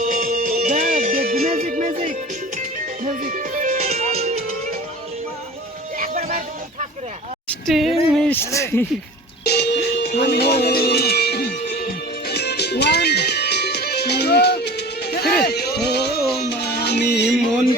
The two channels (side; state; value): both; normal; correlation 0.40